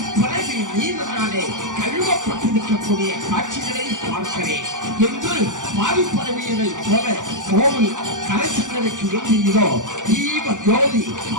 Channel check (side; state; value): left; late; 0.87 ms